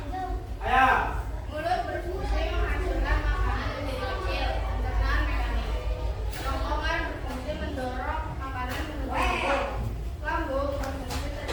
Ayo. Mulut berfungsi menghancurkan makanan menjadi kecil, pencernaan mekanik. Kerongkongan berfungsi mendorong makanan menuju mulut. Lambung berfungsi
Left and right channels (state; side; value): identical; both; correlation 1.00